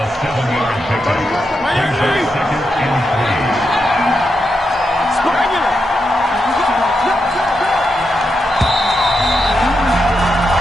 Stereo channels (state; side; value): normal; both; correlation 0.85